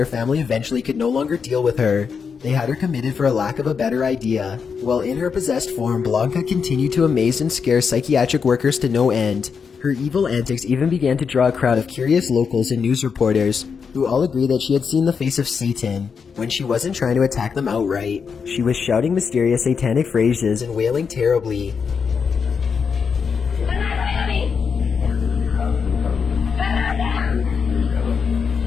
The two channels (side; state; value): right; quieter; 6.0 dB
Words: family eventually could no longer deal with her. They had her committed for a lack of a better idea. While in her possessed form, Blanca continued to amaze and scare psychiatric workers to no end. Her evil antics even began to draw a crowd of curious locals and news reporters, who all agreed that she had seen the face of Satan, when she wasn't trying to attack them outright. She was shouting mysterious satanic phrases and wailing terribly.